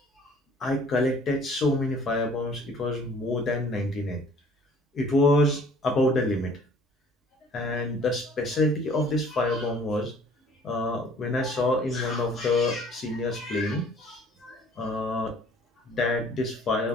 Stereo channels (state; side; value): normal; both; correlation 0.54